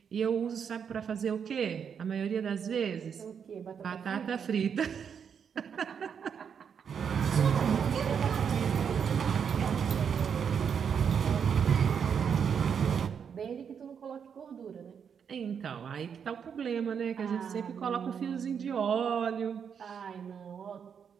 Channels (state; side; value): quieter; left; 7.2 dB